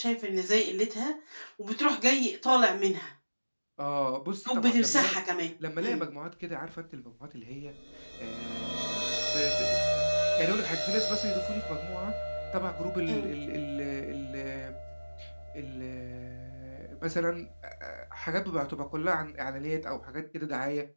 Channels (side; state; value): both; inverted; correlation -1.00